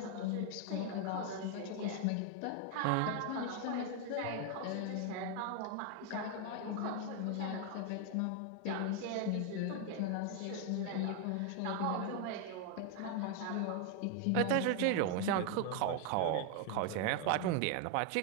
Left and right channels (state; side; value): different; both; correlation 0.01